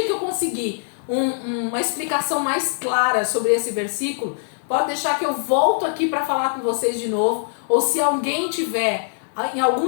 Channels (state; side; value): silent; right; digital silence